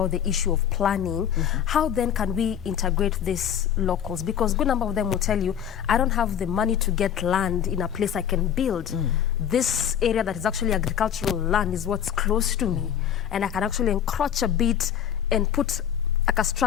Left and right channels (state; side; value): quieter; right; 9.4 dB